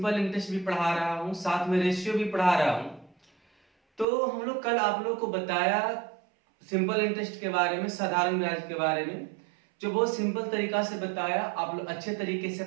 इंटरेस्ट भी पढ़ा रहा हूं, साथ में रेशियो भी पढ़ा रहा हूं। तो हम लोग कल आप लोग को बताया सिंपल इंटरेस्ट के बारे में, साधारण ब्याज के बारे में, जो बहुत सिंपल तरीका से बताया। आप लोग अच्छे तरीके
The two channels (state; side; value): drops out; left; at 4.0 s